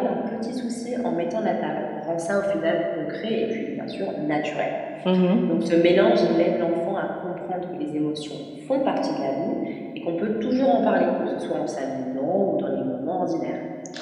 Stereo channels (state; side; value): identical; both; correlation 1.00